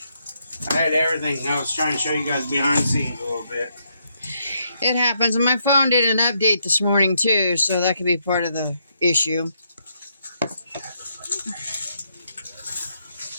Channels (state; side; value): inverted; both; correlation -0.76